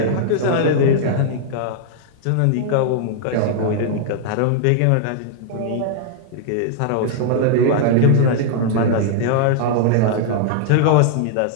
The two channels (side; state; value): both; different; correlation -0.01